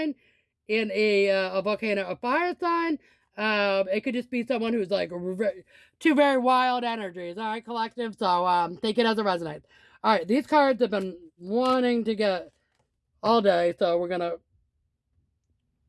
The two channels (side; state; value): both; identical; correlation 1.00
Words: in a volcano, a fire sign. It could just be someone who's like two very wild energies. All right, collective. So take it as it resonates. All right. These cards have been wanting to get all day, so we're gonna